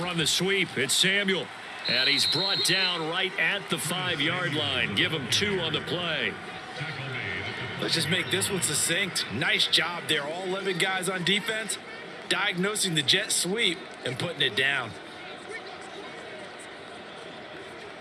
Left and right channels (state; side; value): identical; both; correlation 1.00